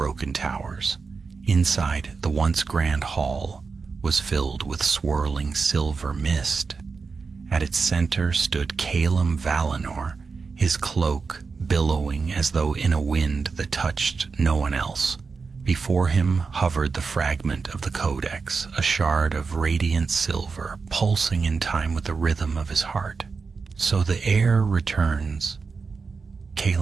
towers. Inside, the once grand hall was filled with swirling silver mist. At its center stood Calum Valinor, his cloak billowing as though in a wind that touched no one else. Before him hovered the fragment of the codex, a shard of radiant silver, pulsing in time with the rhythm of his heart. "So the heir returns,"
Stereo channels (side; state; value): left; quieter; 4.8 dB